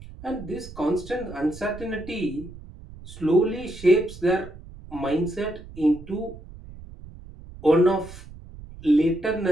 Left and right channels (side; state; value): right; noise; rumble, 16 dB below the sound